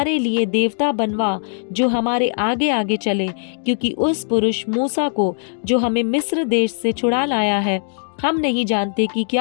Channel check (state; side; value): silent; right; 64 dB below the other